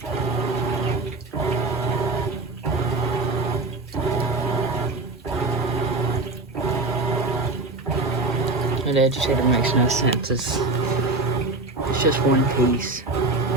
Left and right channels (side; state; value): left; quieter; 3.2 dB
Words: And the agitator makes no sense. It's just one piece.